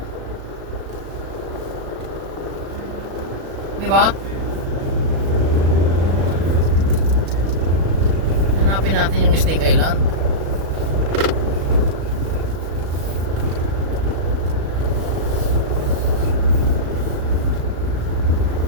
Di ba? Hanapin natin yung Snake Island.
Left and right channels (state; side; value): late; left; 36 ms